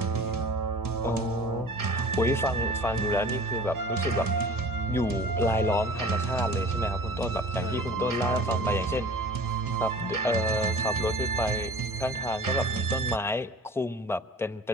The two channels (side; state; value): both; normal; correlation 0.43